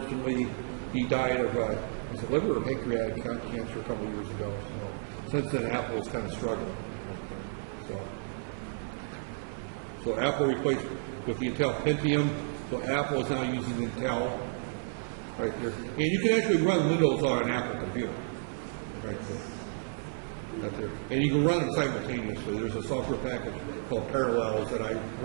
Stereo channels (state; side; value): silent; left; 57 dB below the other